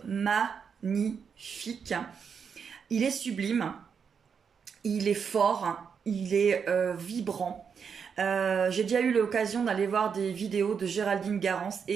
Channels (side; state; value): left; quieter; 6.6 dB